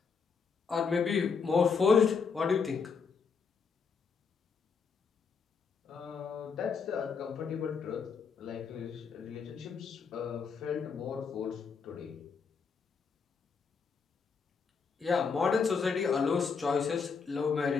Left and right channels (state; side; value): quieter; right; 5.6 dB